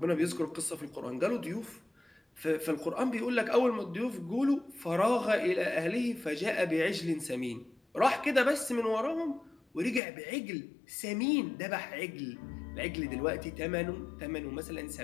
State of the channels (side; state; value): right; drops out; at 10.0 s